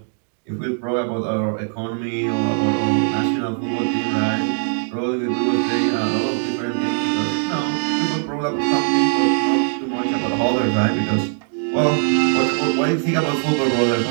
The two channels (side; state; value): left; silent; 65 dB below the other